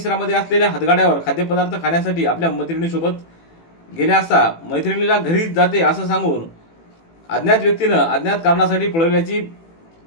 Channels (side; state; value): right; late; 18 ms